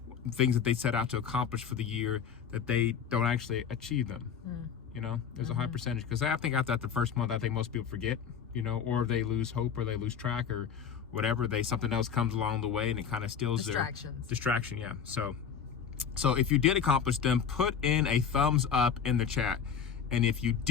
things that they set out to accomplish for the year, that they don't actually achieve them. There's a high percentage, because I think after the first month, I think most people forget, or they lose hope, or they lose track, or whatever. Something else comes along the way and it kind of steals their distraction. Yeah. So if you did accomplish them, put in a thumbs up in the chat. And if you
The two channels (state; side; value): quieter; right; 7.2 dB